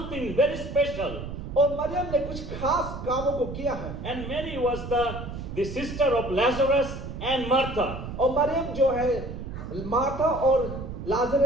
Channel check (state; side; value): noise; right; rumble, 8 dB below the sound